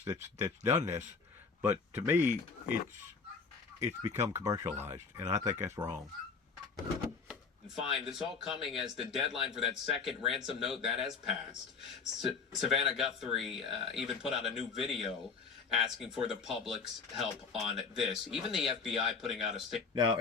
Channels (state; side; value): quieter; right; 5.1 dB